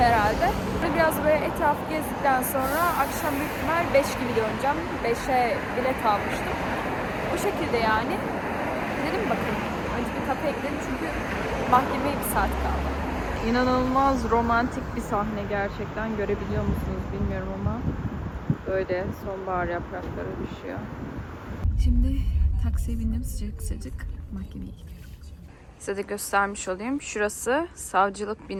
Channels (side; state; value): both; identical; correlation 1.00